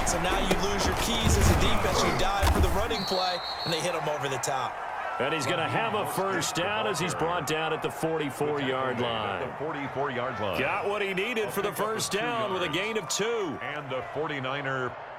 So now you lose your keys as a defense. You dive for the running play, and they hit him over the top. And he's going to have a 1st down as he's brought down at the 44-yard line. The 44-yard line. Got what he needed for the 1st down with a gain of 2. And the 49er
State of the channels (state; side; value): identical; both; correlation 1.00